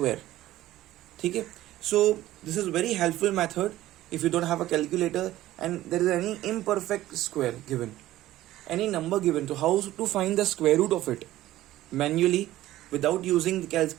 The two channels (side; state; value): left; quieter; 15.1 dB